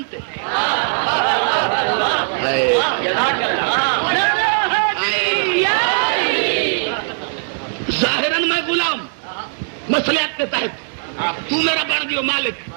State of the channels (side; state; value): left; silent; digital silence